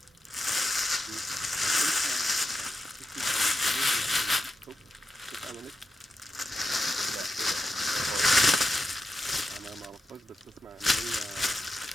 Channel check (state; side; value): normal; both; correlation 0.88